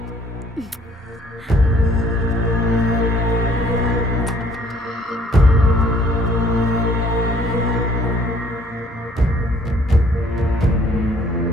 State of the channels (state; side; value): normal; both; correlation 0.60